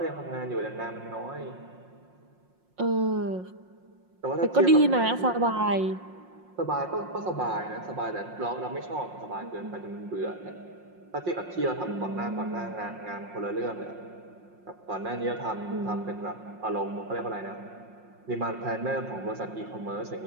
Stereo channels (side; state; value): left; late; 5.6 ms